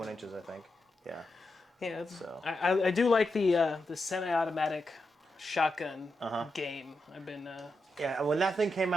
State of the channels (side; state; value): both; normal; correlation 0.87